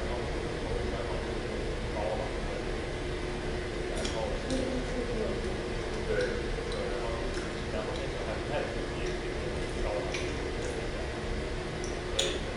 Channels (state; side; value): identical; both; correlation 1.00